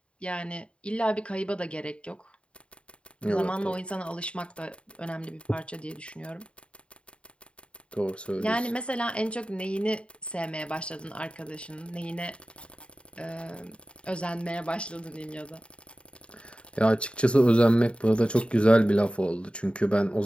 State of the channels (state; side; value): late; right; 0.057 ms